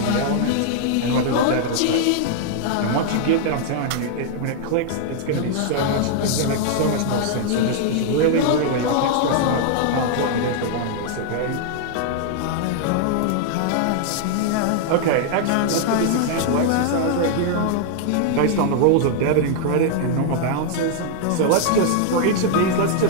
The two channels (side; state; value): both; different; correlation -0.01